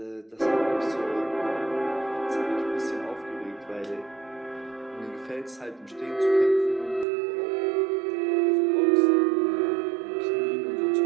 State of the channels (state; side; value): drops out; left; at 7.1 s